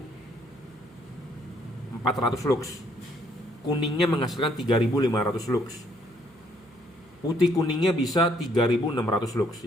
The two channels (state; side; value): noise; right; hum, 28 dB below the sound